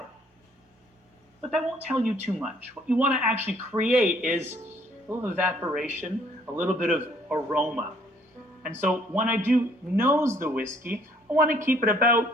But that won't tell you too much. What you want to actually create is a little evaporation, a little bit of aroma. And so when I do nose the whiskey, I want to keep it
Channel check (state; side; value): normal; both; correlation 0.62